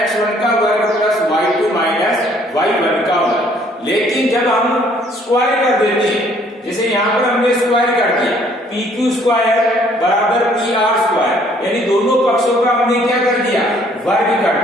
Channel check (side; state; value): both; normal; correlation 0.61